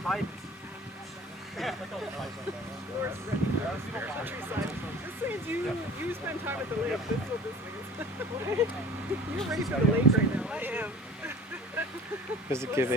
This means you spend time at the lake. This is what this means. You're ready for the lake right now. I am. Does it give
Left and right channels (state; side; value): normal; both; correlation 0.44